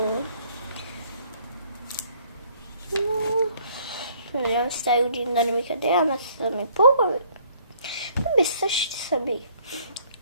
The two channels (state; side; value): inverted; both; correlation -0.61